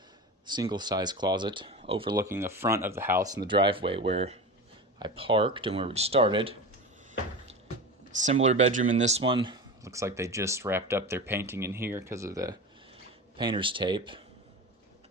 size closet overlooking the front of the house and the driveway where I parked and where we started. Similar bedroom in this one. Looks like they just wrapped up their painting in here because of the painter's tape.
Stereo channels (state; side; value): normal; both; correlation 0.27